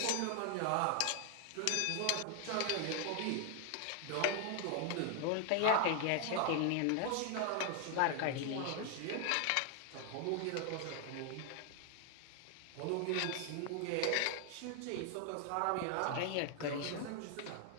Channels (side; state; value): both; different; correlation 0.00